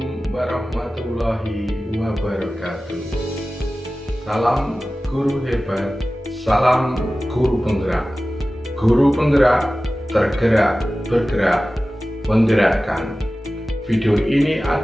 warahmatullahi wabarakatuh. Salam guru hebat, salam guru penggerak. Guru penggerak tergerak, bergerak, menggerakkan. Video ini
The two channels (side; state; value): both; normal; correlation 0.96